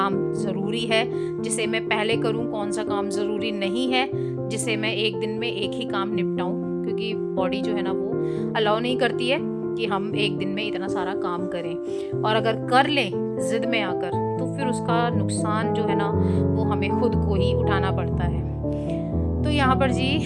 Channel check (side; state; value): both; identical; correlation 1.00